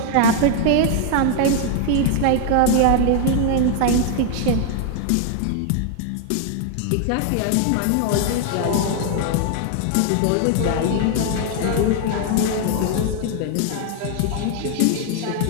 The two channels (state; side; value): different; both; correlation 0.00